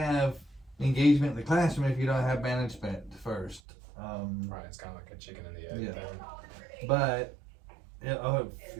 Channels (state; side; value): drops out; left; at 3.6 s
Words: engagement in the classroom if you don't have management first. Right, it's kind of like a chicken and the egg Yeah. thing. But,